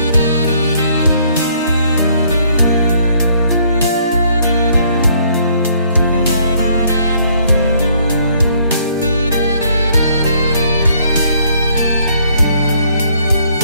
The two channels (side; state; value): both; inverted; correlation -0.65